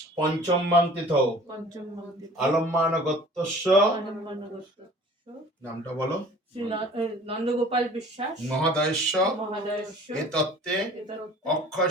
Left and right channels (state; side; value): normal; both; correlation 0.47